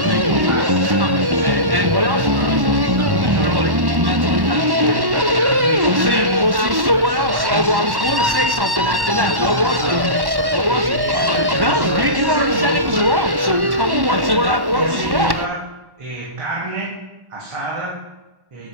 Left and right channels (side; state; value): left; late; 1.1 ms